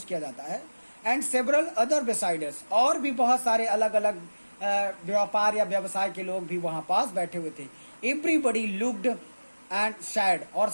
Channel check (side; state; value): both; inverted; correlation -1.00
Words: किया जाता है। एंड सेवरल अदर बिसाइडर्स, और भी बहुत सारे अलग अलग व्यापार या व्यवसाय के लोग भी वहां पास बैठे हुए थे। एवरीबडी लुक्ड एंड सैड, और